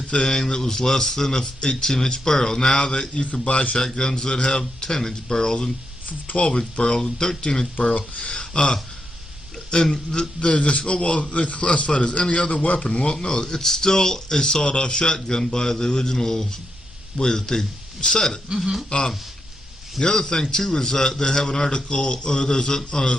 that was less than a 18-inch barrel. Now that you can buy shotguns that have 10-inch barrels and 12-inch barrels and 13-inch barrel. And they're just, they're classified as any other weapon. Well, no, it's still a sawed-off shotgun by the original way that they said it. The other thing, too, is that they have an article, or there's a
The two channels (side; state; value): both; normal; correlation 0.83